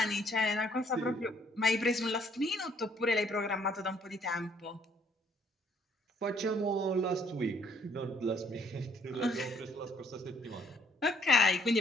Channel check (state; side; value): normal; both; correlation 0.65